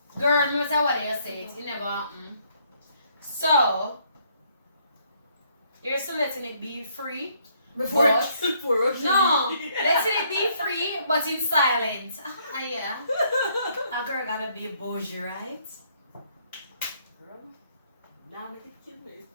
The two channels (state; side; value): inverted; both; correlation -0.68